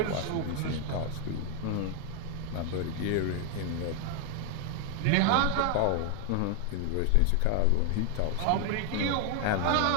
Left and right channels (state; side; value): different; both; correlation 0.00